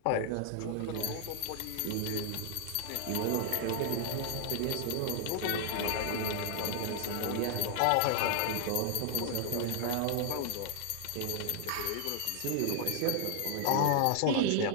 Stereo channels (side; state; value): both; different; correlation 0.00